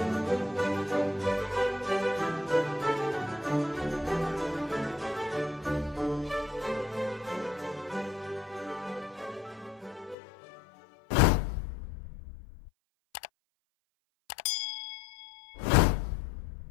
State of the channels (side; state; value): right; drops out; at 10.2 s